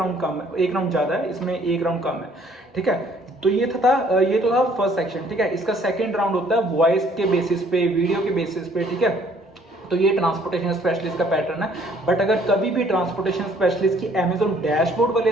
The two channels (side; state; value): both; normal; correlation 0.60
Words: कम है, 1 राउंड ज्यादा है, इसमें 1 राउंड कम है, ठीक है। तो ये तो था फर्स्ट सेक्शन, ठीक है। इसका सेकंड राउंड होता है वॉइस के बेसिस पे, वीडियो के बेसिस पे, ठीक है। तो ये ट्रांसपोर्टेशन स्पेशलिस्ट का पैटर्न है। बट अगर कभी भी ट्रांसपोर्टेशन स्पेशलिस्ट की अमेजोन डैशबोर्ड वाले